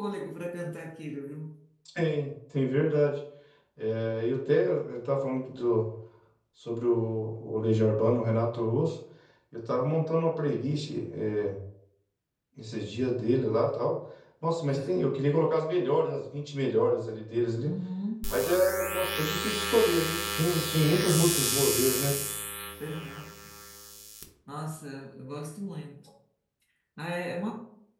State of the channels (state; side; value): identical; both; correlation 1.00